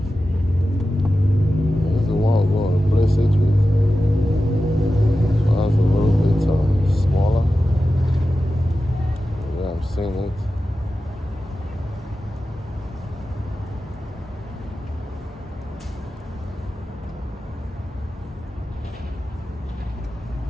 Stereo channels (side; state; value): both; normal; correlation 0.93